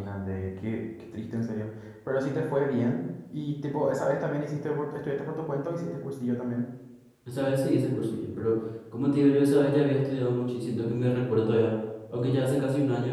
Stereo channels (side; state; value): both; identical; correlation 1.00